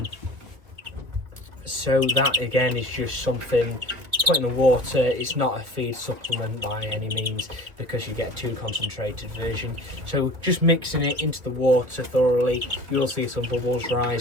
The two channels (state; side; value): late; left; 2.1 ms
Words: So that again is just something put in the water. It's not a feed supplement by any means, because you get a too concentrated version. So just mixing it into the water thoroughly, you'll see some bubbles